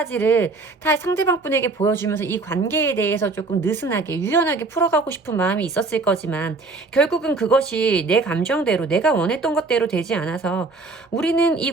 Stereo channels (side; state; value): left; quieter; 3.7 dB